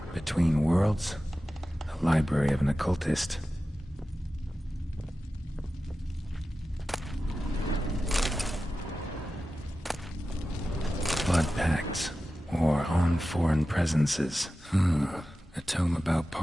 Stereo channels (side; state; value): both; normal; correlation 0.94